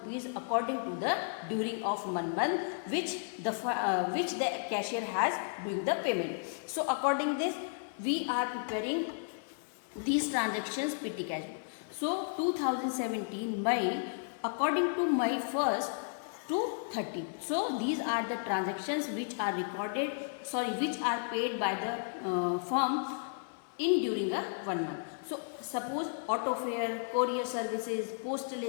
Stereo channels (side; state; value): right; silent; 55 dB below the other